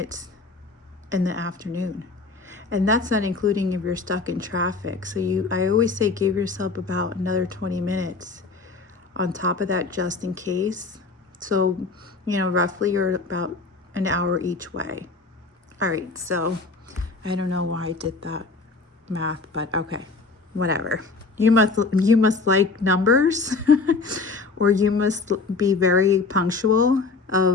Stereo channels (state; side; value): quieter; right; 4.0 dB